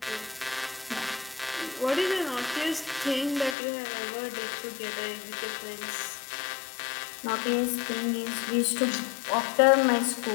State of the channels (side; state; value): right; drops out; at 3.6 s